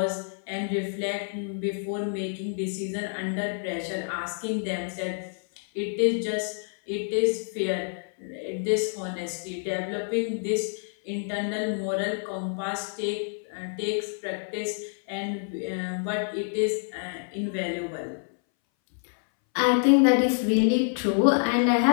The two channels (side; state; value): right; silent; 60 dB below the other